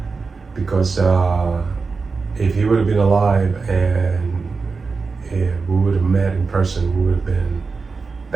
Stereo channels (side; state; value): left; quieter; 4.5 dB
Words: because if he would have been alive and if we would have met in person, we would have been